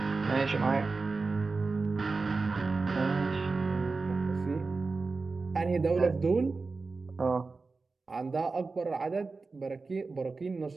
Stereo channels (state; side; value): quieter; left; 4.0 dB